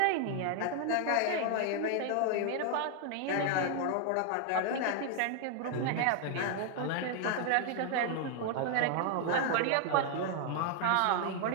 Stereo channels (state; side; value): different; both; correlation 0.00